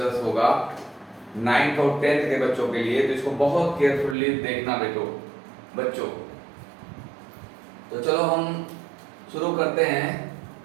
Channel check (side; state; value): left; drops out; at 4.2 s